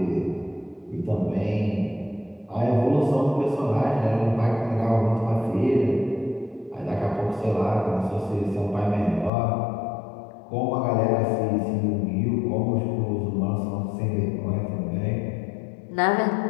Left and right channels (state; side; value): drops out; right; at 9.3 s